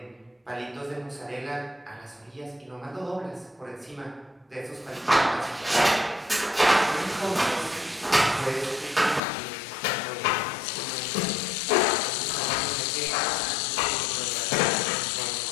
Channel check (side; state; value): right; drops out; at 9.2 s